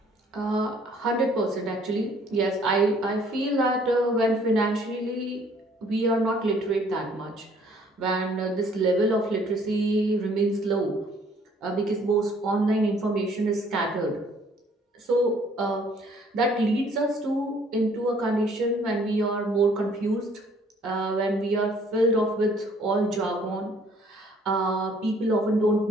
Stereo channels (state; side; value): normal; both; correlation 0.60